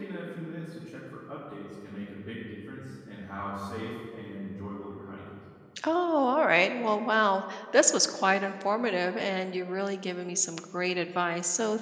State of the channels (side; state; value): both; identical; correlation 1.00